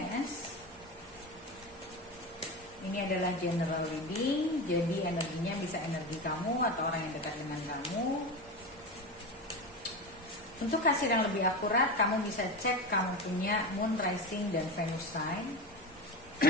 Ini adalah general reading, jadi energinya bisa energi kamu atau orang yang dekat dengan kamu. Untuk hasil yang lebih akurat, kamu bisa cek kamu punya Moon, Rising, dan Venus sign.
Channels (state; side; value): normal; both; correlation 0.22